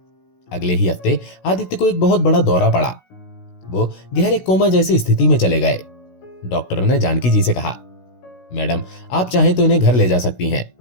अगले ही हफ्ते आदित्य को एक बहुत बड़ा दौरा पड़ा। वो गहरे कोमा जैसी स्थिति में चले गए। डॉक्टर ने जानकी जी से कहा, मैडम, आप चाहें तो इन्हें घर ले जा सकती हैं।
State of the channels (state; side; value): late; right; 16 ms